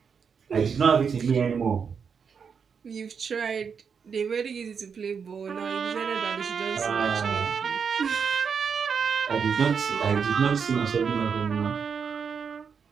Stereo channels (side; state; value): left; quieter; 6.4 dB